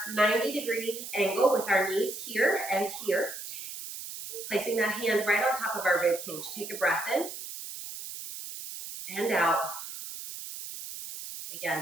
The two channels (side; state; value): right; noise; hiss, 9 dB below the sound